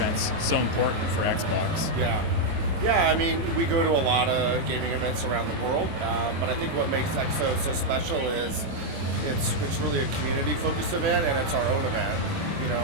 so important for Xbox. Yeah, I mean, we go to a lot of gaming events around the world, but I think what makes XO so special is it's really a community-focused event, and it's our own event. You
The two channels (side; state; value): left; late; 22 ms